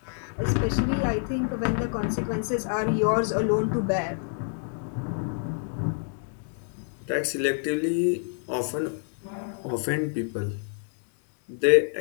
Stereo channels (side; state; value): right; silent; 60 dB below the other